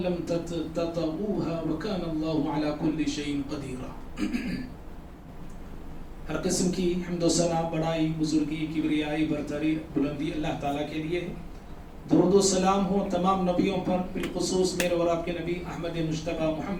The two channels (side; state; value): both; identical; correlation 1.00